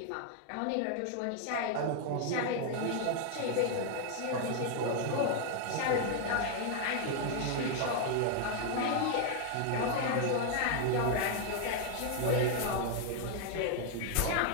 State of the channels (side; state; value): both; different; correlation 0.00